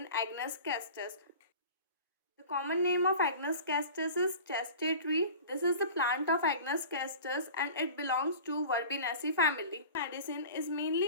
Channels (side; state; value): both; inverted; correlation -0.39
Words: Agnus castus. The common name of Agnus castus is chestnut tree. This is the plant of Agnus castus and it belongs to Verbenaceae family. Medicine is